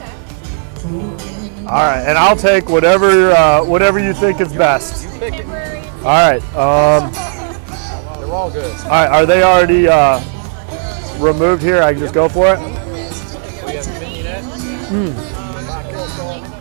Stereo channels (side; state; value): left; silent; digital silence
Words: All right, and I'll take whatever you think is best. Temporary. All right. They're all good. All right, are they already removed here? I can just go for it? We have vignette.